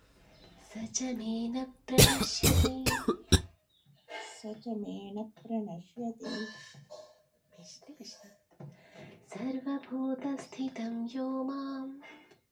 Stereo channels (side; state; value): both; identical; correlation 1.00